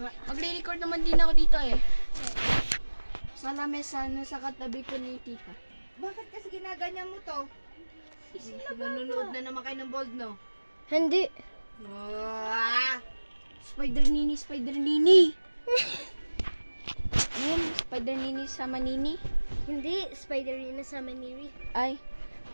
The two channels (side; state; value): both; inverted; correlation -1.00